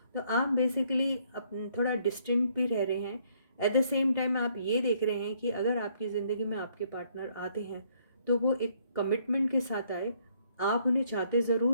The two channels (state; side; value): inverted; both; correlation -0.67